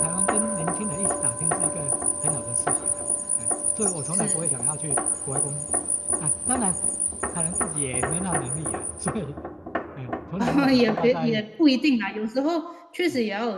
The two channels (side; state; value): both; identical; correlation 1.00